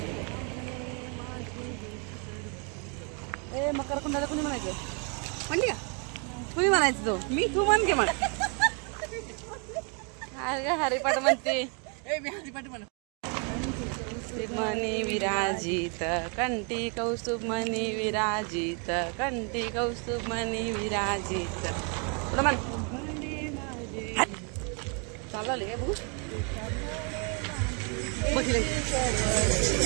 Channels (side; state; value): left; quieter; 37.0 dB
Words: ए मकर कुंडाला कुणी म्हणायचं म्हणली का? कुणी म्हणायचं तो मी तू म्हण घे म्हण. हरिपाठ म्हणते मी हरिपाठ म्हण. मनी विराजित कंठी कौस्तुभ मनी विराजित कंठी कौस्तुभ मनी विराजित पुढं म्हण. चालले काय बघू बघितलं